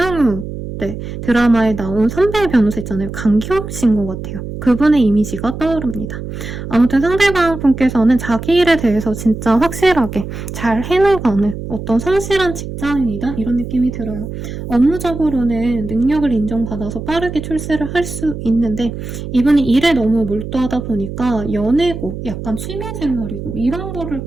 네, 드라마에 나온 선배 변호사 있잖아요. 강기영 씨인 것 같아요. 그분의 이미지가 떠오릅니다. 아무튼 상대방 분께서는 자기 일에 대해서 진짜 확실하게 잘 해나가는 어떤 성실한 직장인이다 이런 느낌이 들어요. 업무적으로는 능력을 인정받아서 빠르게 출세를 할 수 있는데, 이분이 일에 너무 몰두하다 보니까 연애고 약간 취미생활이고 이런 거를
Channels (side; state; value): right; noise; hum, 8 dB below the sound